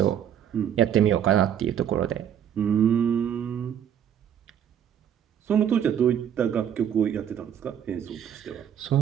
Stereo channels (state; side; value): quieter; left; 9.3 dB